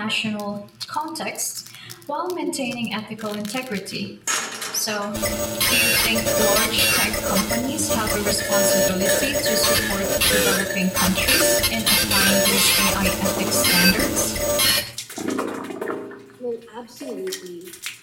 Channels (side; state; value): both; identical; correlation 1.00